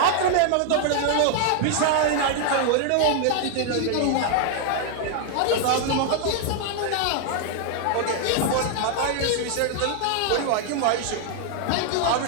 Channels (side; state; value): both; different; correlation 0.00